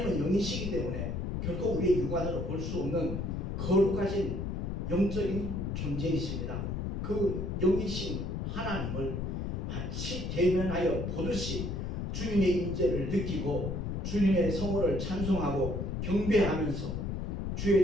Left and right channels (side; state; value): left; noise; rumble, 2 dB below the sound